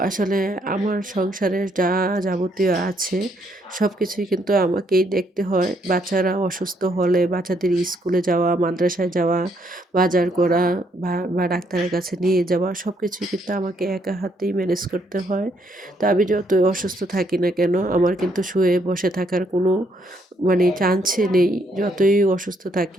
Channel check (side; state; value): both; normal; correlation 0.72